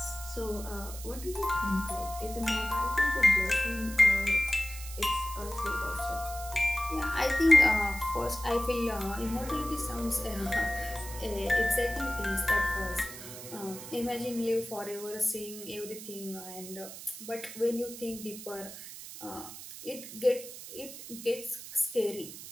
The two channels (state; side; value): noise; right; hiss, 12 dB below the sound